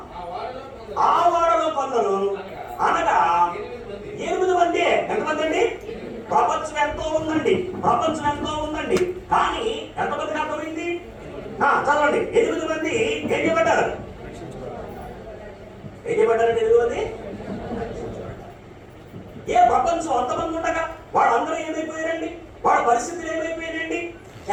ఆ వాడలో కొందరు, అనగా 8 మంది. ఎంతమంది అండి? ప్రపంచం ఎంతో ఉందండి. ప్రపంచం ఎంతో ఉందండి. కానీ ఎంతమందికి అర్థమైంది? చదవండి. 8 మంది ఏం చేయబడ్డారు? ఏం చేయబడ్డారండి? 8 మంది. ఏ ప్రపంచం అంతమంది ఉండగా వాళ్ళందరూ ఏమైపోయారండి? వాళ్ళ పరిస్థితులు ఏమైపోయారండి?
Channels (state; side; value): identical; both; correlation 1.00